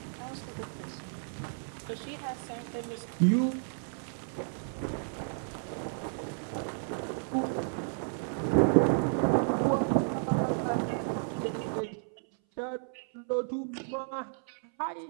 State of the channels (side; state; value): left; silent; 56 dB below the other